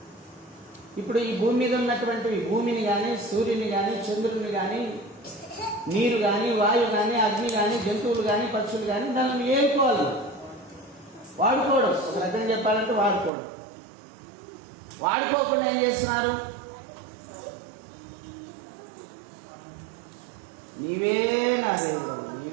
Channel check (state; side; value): drops out; left; at 13.3 s